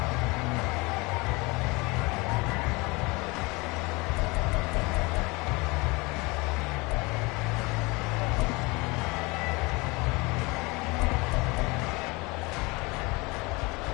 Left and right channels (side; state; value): right; quieter; 25.3 dB